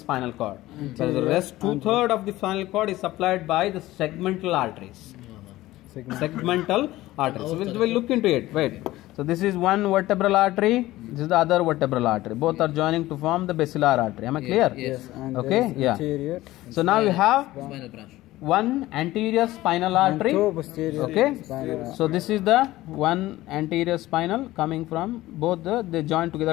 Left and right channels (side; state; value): right; quieter; 16.8 dB